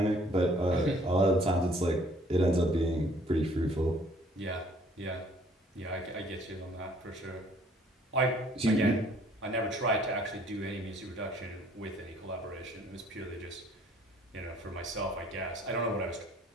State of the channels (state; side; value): normal; both; correlation 0.59